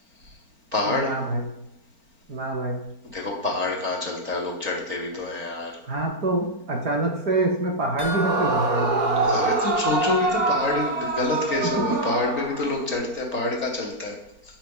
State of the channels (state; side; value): late; left; 4.4 ms